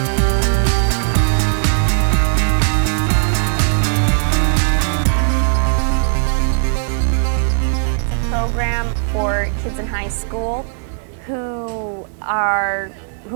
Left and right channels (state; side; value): silent; left; digital silence